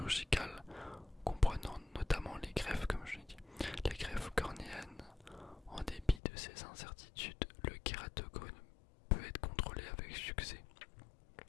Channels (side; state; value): right; drops out; at 6.2 s